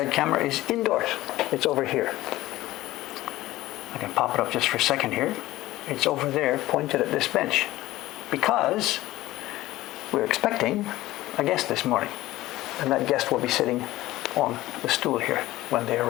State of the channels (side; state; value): right; quieter; 16.8 dB